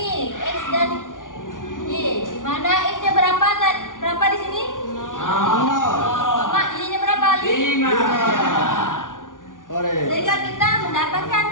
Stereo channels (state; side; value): late; right; 0.88 ms